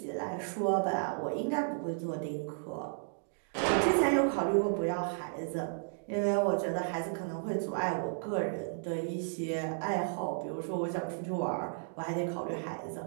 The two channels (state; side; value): silent; left; digital silence